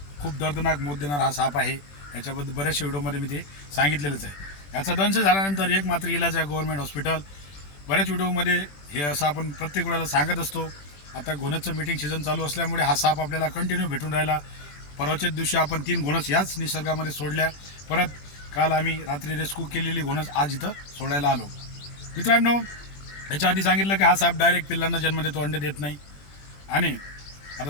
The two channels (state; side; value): late; right; 21 ms